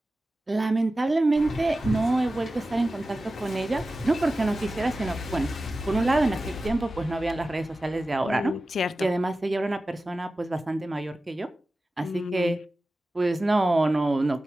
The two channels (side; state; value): both; normal; correlation 0.95